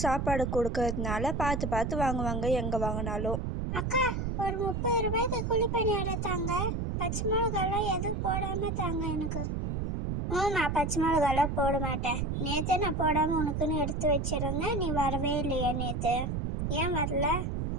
சாப்பாடு கொடுக்கறதுனால பார்த்து பார்த்து வாங்குவாங்க எங்கே வாங்கினாலும். அக்கா, ஒரு 30 ரூபாய்க்கு குழிப்பணியாரம் தாங்க. பச்சை மிளகாலாம் எதுவும் போடாமல் தாங்க எனக்கு. நான் பச்சை மிளகாலாம் போட மாட்டேன். நேற்று நான் போடாமல் உனக்குன்னு எடுத்து வச்சிருந்தேன். நீ வரவே இல்லையா நேற்று? ஏன் வரல?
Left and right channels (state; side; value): noise; right; rumble, 1 dB below the sound